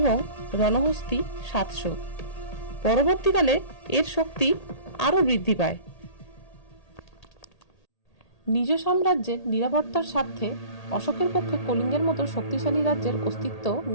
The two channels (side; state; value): right; late; 1.8 ms